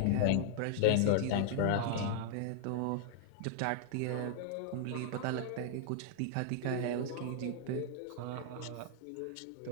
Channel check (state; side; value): different; both; correlation -0.01